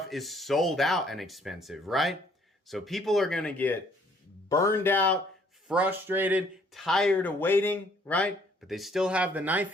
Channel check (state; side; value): normal; both; correlation 0.63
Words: is sold out and expensive, right? So people are going to get burned out, frustrated, tired of waiting, right? But they still have the